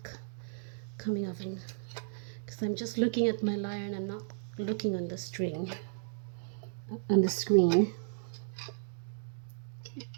coming off, and because I'm just looking at my lyre and I'm not looking on the string, on the screen.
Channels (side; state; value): left; silent; digital silence